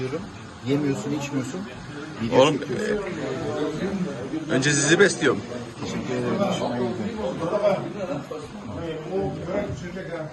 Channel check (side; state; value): both; identical; correlation 1.00